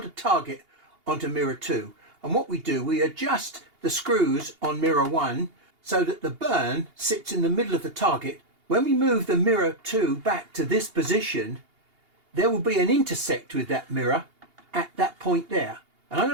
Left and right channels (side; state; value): left; late; 2.8 ms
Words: target onto mirror 2. And what we do, we adjust the screws on mirror 1 so that the burn sits in the middle of the target. When we move the mirror 2 back to this position, there will be an intersect with that mirror, at that point there. And I'm